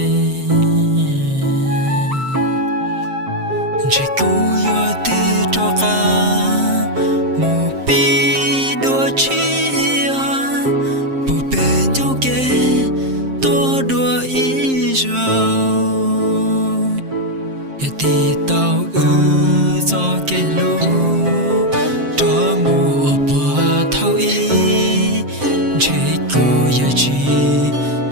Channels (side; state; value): left; late; 7.6 ms